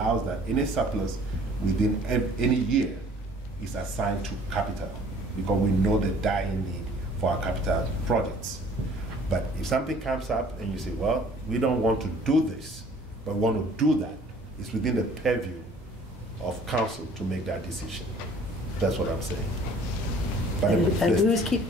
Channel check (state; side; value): normal; both; correlation 0.54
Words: that any surplus within any year is assigned to capital, because we know the dying need for our capital projects. But if something comes up and you say, well, we don't want to do this, but we want to do that, it's within the purview of council to make that decision. That's what I'm saying. But And who's